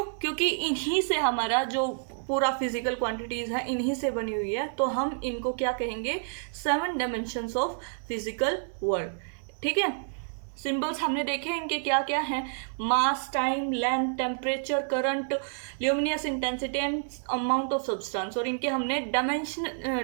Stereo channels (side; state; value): left; silent; digital silence